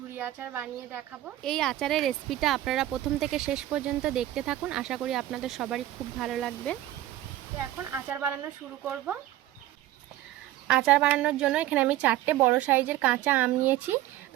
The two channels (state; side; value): quieter; left; 14.4 dB